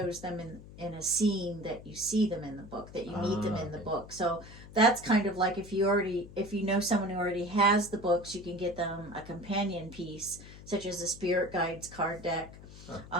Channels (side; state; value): left; noise; hum, 17 dB below the sound